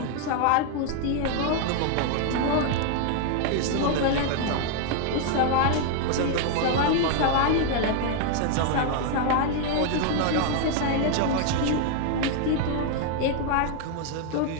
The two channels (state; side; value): different; both; correlation 0.00